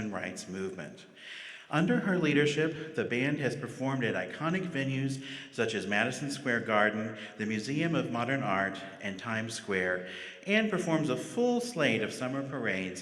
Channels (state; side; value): identical; both; correlation 1.00